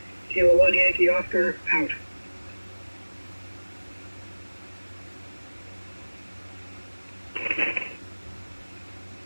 Kilo 1 Yankee Oscar, out.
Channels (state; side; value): inverted; both; correlation -1.00